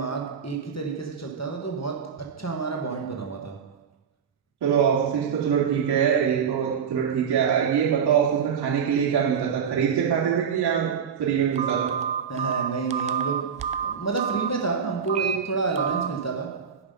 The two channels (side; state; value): left; quieter; 7.1 dB